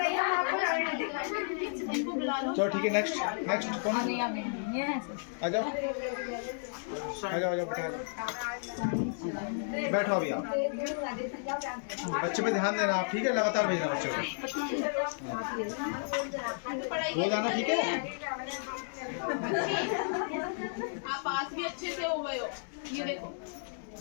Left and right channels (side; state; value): right; silent; digital silence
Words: हम आपको इनको बुला लो। चलो ठीक है। नेक्स्ट नेक्स्ट कौन? आ जाओ आ जाओ बैठो अभी आप। बच्चे पे ध्यान देना आप, ठीक है? लगातार भेजना बच्चों को, पढ़ाई रोज आना, ठीक है? आप पास भी अच्छे से हो गए हो, ये देखो।